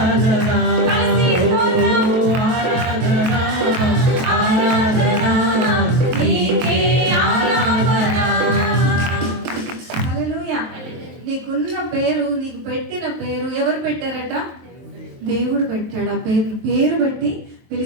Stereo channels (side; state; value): left; late; 23 ms